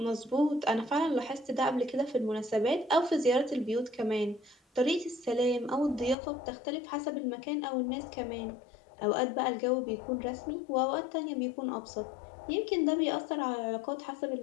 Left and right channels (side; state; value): right; drops out; at 6.2 s